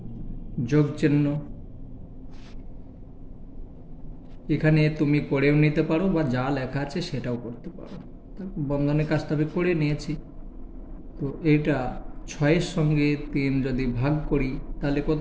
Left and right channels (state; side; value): identical; both; correlation 1.00